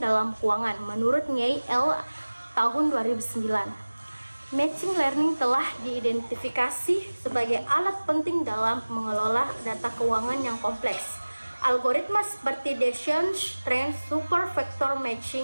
keuangan. Menurut Nye L. tahun 2009, machine learning telah diidentifikasi sebagai alat penting dalam mengelola data keuangan yang kompleks. Algoritma seperti Bayesian Trend Super Vector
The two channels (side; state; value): both; inverted; correlation -1.00